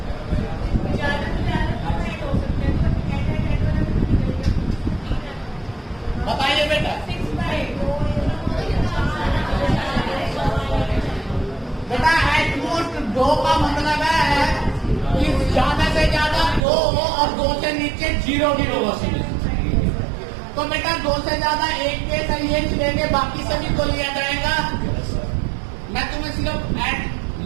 बताइए बेटा। बेटा एटमोस्ट 2 का मतलब है कि ज्यादा से ज्यादा 2 और 2 से नीचे 0 भी हो सकते। तो बेटा 2 से ज्यादा 1 केस है, ये लेंगे, बाकी सभी को लिया जाएगा। मैं तुम्हें सिर्फ एट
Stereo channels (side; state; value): left; drops out; at 16.7 s